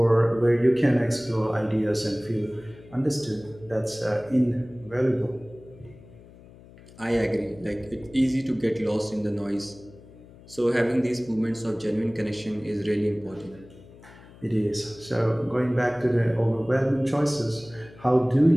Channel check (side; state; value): left; noise; hum, 22 dB below the sound